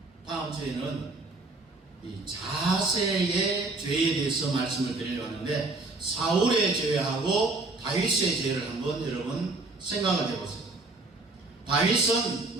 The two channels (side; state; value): left; quieter; 3.3 dB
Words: 다음 주에는 이 자세의 죄에 대해서 말씀을 드리려고 하는데, 사울의 죄하고 다윗의 죄를 한번 여러분 생각을 해보세요. 다윗은